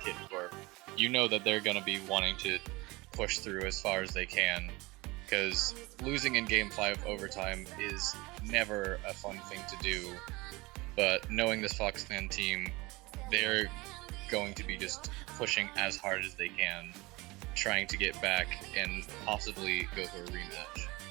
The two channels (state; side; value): quieter; left; 22.8 dB